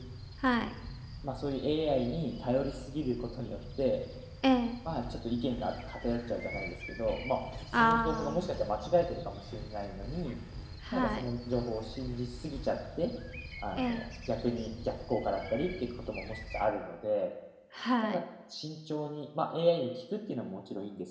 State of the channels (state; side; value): identical; both; correlation 1.00